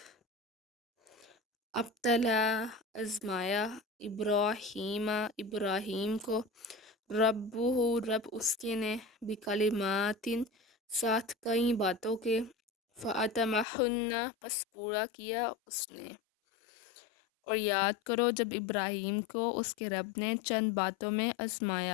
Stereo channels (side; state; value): right; drops out; at 13.7 s